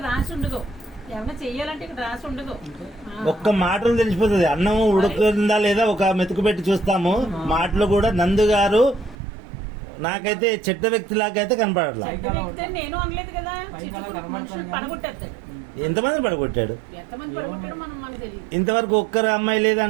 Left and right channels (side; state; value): left; drops out; at 9.2 s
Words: రాసి ఉండదు. ఏమన్నా చెయ్యాలంటే ఇక్కడ రాసి ఉండదు. ఒక్క మాటలు తెలిసిపోతుంది. అన్నం ఉడుకుతుందా లేదా ఒక మెతుకు పెట్టి చూస్తాము. మాటలు కూడా నందు గారు నాకైతే చెడ్డ వ్యక్తి లాగైతే కనపడట్లా. నేను అనలేదు కదా. పడగొట్టేస్తాడు. ఎంతమంది పడగొట్టాడు? ఎంతమంది పడగొట్టాడు మనం మనకు తెలియదు. ఇంతవరకు ఒక్కరు అమ్మాయి లేదు